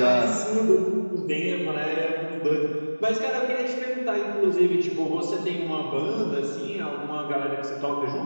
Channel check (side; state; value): both; inverted; correlation -1.00